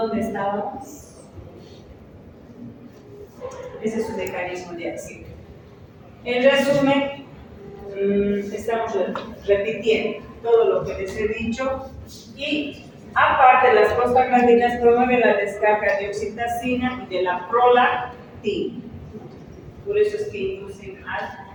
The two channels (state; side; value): identical; both; correlation 1.00